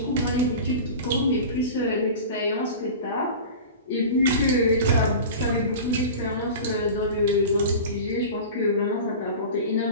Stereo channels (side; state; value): both; inverted; correlation -0.33